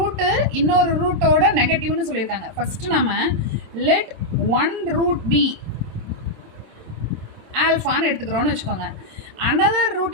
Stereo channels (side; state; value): left; late; 26 ms